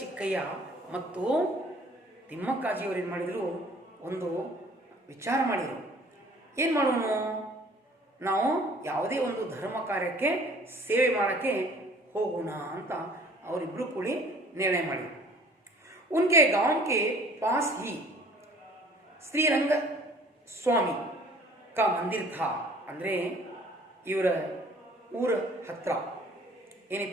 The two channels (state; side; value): normal; both; correlation 0.53